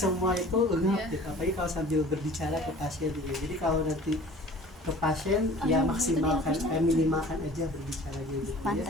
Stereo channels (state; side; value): normal; both; correlation 0.46